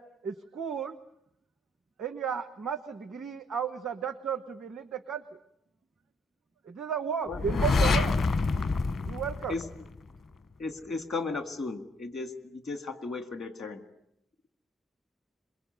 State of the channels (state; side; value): normal; both; correlation 0.67